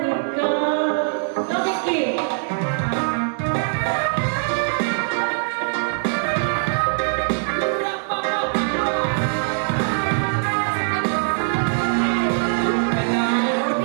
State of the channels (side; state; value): left; silent; 64 dB below the other